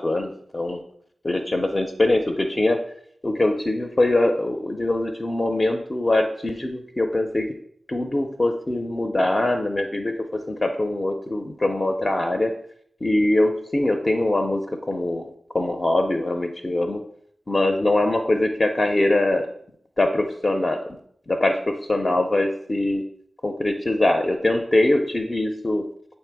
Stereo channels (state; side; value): normal; both; correlation 0.97